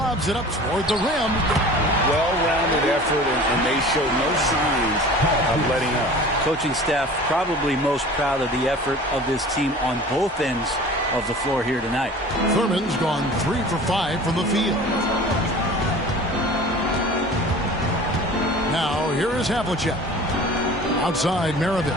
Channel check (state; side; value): normal; both; correlation 0.42